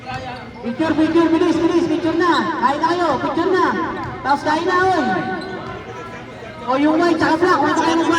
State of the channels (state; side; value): identical; both; correlation 1.00